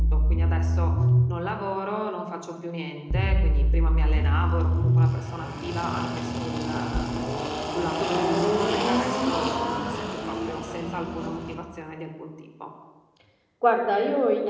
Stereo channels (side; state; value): both; identical; correlation 1.00